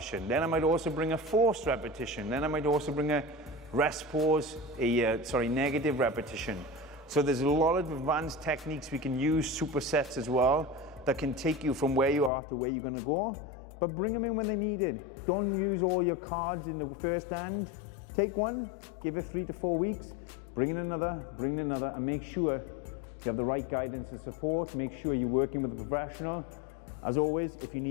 Then I might also bring a forced repetition. Then I might also bring a rest pause, negative repetition. So there's a lot of advanced techniques we can use, supersets as well, that can take you from where you are to where you're gonna go, but bring them in when they need it. Don't use all your cards in the first hand. Take one, give it 3 to 4 weeks, bring in another, and make sure you have the right guidance and support. Make sure you're working with a professional. As always, if you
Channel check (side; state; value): right; drops out; at 12.3 s